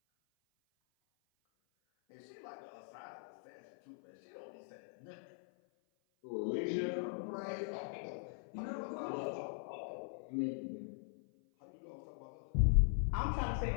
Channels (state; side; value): silent; right; 50 dB below the other